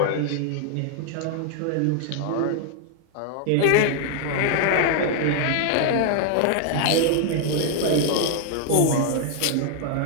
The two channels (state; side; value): different; both; correlation 0.00